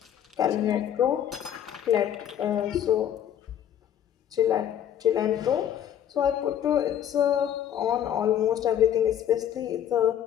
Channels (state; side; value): quieter; right; 10.1 dB